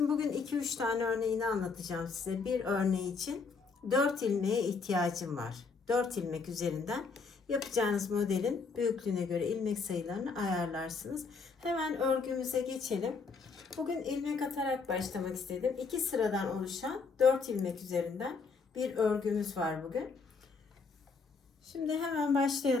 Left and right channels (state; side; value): quieter; right; 4.7 dB